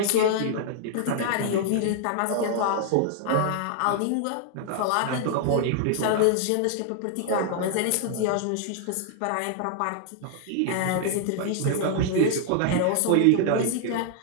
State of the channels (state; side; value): different; both; correlation 0.00